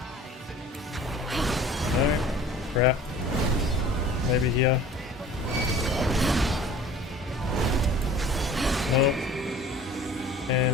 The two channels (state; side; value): normal; both; correlation 0.46